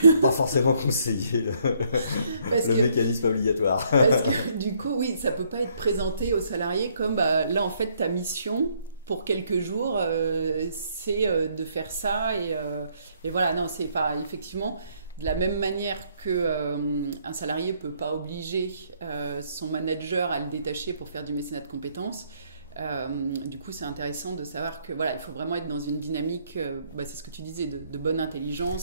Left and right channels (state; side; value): inverted; both; correlation -0.68